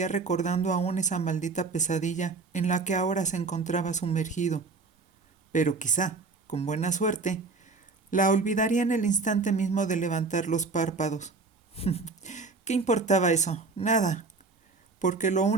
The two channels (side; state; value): left; quieter; 4.1 dB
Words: recordando aún esa maldita pesadilla en la que ahora se encontraba sumergido, pero quizá, con buena suerte, la olvidaría en el instante mismo de levantar los párpados. ¿Qué importaba eso? Nada, porque lo